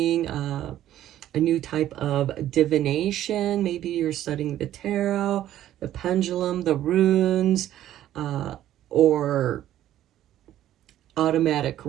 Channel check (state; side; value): quieter; left; 12.5 dB